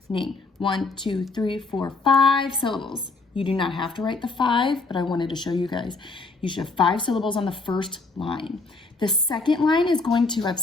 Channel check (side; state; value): right; quieter; 3.7 dB